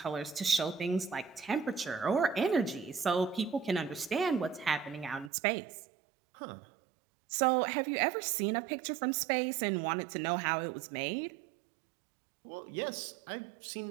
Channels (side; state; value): left; drops out; at 5.3 s